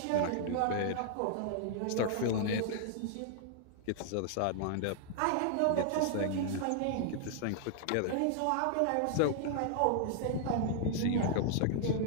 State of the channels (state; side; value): different; both; correlation -0.01